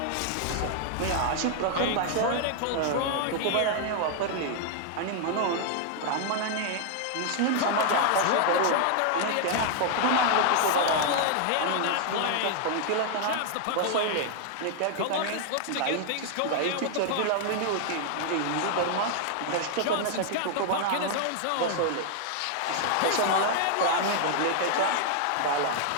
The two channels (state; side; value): different; both; correlation 0.00